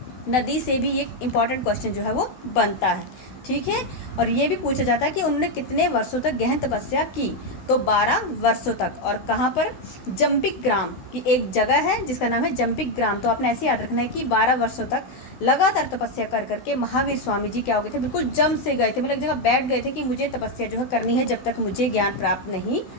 नदी से भी एक इम्पॉर्टेंट क्वेश्चन जो है वो बनता है। ठीक है। और ये भी पूछा जाता है कि उन्होंने कितने वर्षों तक गहन तपस्या की? तो 12 वर्षों तक। और कहाँ पर? जंबिक ग्राम की एक जगह है जिसका नाम है जंबिक ग्राम। तो आपने ऐसे याद रखना है कि 12 वर्षों तक लगातार तपस्या कर करके महावीर स्वामी जी क्या हो गए थे? बिल्कुल जम से गए थे, मतलब एक जगह बैठ गए थे कि मुझे तपस्या जो है करनी है जब तक मुझे ज्ञान प्राप्त नहीं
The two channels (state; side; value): late; right; 16 ms